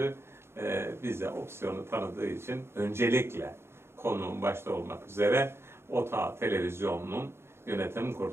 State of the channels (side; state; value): left; late; 0.12 ms